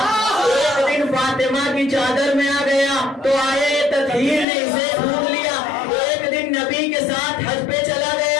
ایک دن فاطمہ کی چادر میں آ گیا تو آئے تطہیر نے اسے ڈھونڈ لیا، ایک دن نبی کے ساتھ حج پہ چلا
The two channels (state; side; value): drops out; right; at 4.5 s